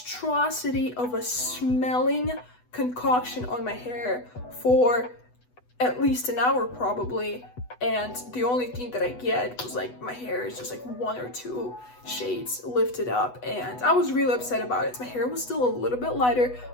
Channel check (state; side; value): late; right; 8.1 ms